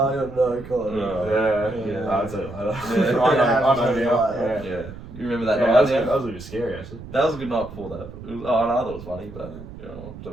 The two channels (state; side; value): noise; right; rumble, 14 dB below the sound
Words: don't know. God. Yeah, Yeah. I'll tell you later. Yeah. I know Yeah. now. Yeah. Yeah. You remember that Yeah, night? that was, Yeah? that was a bit scary actually. That was a good night before that. It was, oh, no, I thought it was funny, but you know,